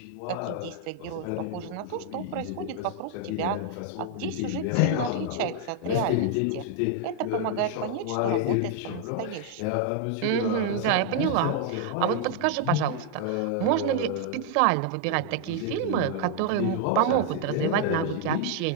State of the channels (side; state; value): both; different; correlation 0.00